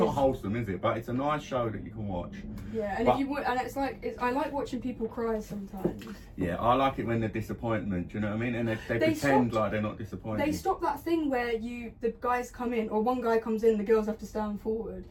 wholesome, is it? But it's a nice show that you can watch. Yeah, and I like watching people cry sometimes. Yeah, I like it when they're disappointment. Do you know what I mean? And they pretend like they're not disappointed. They stop that thing where the guys come in, or one guy comes in, the girls have to stand forward.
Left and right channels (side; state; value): both; identical; correlation 1.00